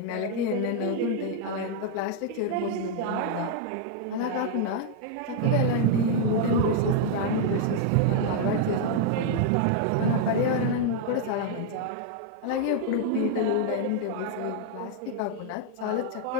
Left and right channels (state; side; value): different; both; correlation 0.00